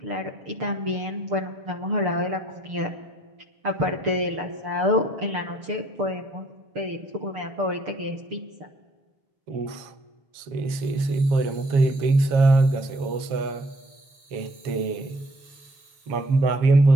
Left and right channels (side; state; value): left; late; 6.8 ms